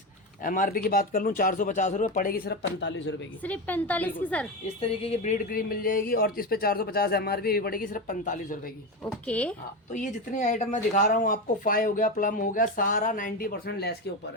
एमआरपी की बात कर लूँ 450 रुपये, पड़ेगी सिर्फ 45 रुपए की, सिर्फ 45 की सर। इस तरीके की ब्रीड क्रीम मिल जाएगी, और इस पे 450 एमआरपी भी पड़ेगी सिर्फ 45 रुपए की। ओके। हाँ, तो ये जितनी आइटम मैं दिखा रहा हूँ आपको, 5 हो गया, प्लम हो गया, सारा 90% लेस के ऊपर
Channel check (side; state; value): both; normal; correlation 0.17